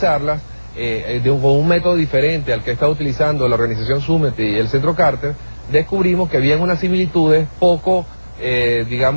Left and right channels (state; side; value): inverted; both; correlation -1.00